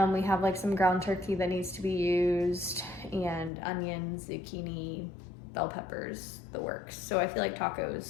We have like some ground turkey that needs to be used, and onions, zucchini, bell peppers, the works. So I feel like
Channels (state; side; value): drops out; right; at 3.5 s